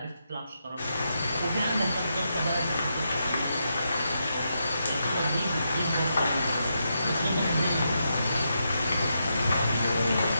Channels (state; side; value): inverted; both; correlation -0.83